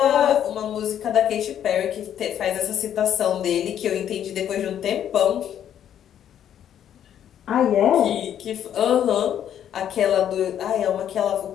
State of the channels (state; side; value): quieter; right; 10.0 dB